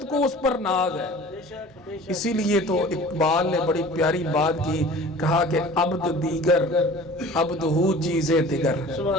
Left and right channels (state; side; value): normal; both; correlation 0.43